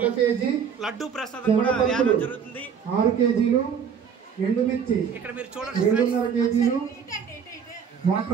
కేజీ, లడ్డు ప్రసాదం కూడా వేయడం జరుగుతుంది. 6 కేజీలు, ఎండుమిర్చి ఇక్కడ మీరు చూడండి 2.5 కేజీలు,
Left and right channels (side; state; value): left; quieter; 7.2 dB